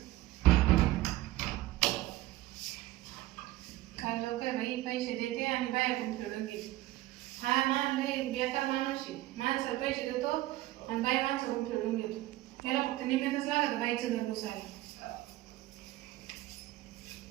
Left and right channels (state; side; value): quieter; left; 16.7 dB